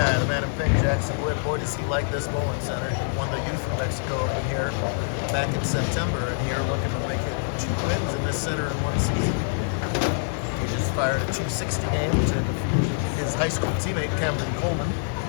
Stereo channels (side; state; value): right; silent; digital silence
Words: the man in pink, Jackson Wood. Boy, does he like this bowling center. He won the Youth of Mexico Open here back in September, and here looking to make it 2 wins in this center in 1 season. He just fired a 260 game to defeat his high school teammate, Camden Coleman.